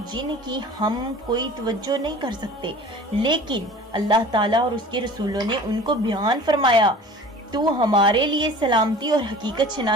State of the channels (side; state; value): both; normal; correlation 0.42